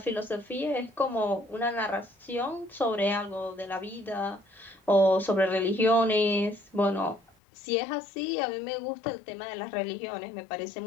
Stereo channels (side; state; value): right; drops out; at 7.3 s